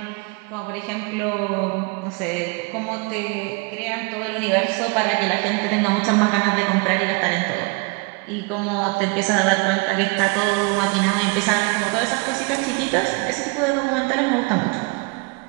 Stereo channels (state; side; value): quieter; left; 29.6 dB